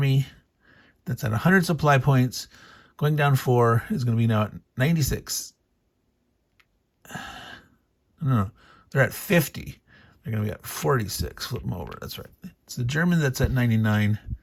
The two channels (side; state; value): both; identical; correlation 1.00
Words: that's at 100 supply points. Going down 4 is going to be now at 96. No, they're at 50. They're going to be at 46. Flip them over. That's right. It's the German that's at 99.